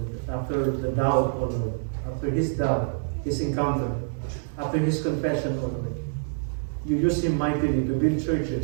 After the doubt, O Lord, after his doubt, his encounter, after his confession, O Lord, you used him mightily to build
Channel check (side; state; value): left; silent; 58 dB below the other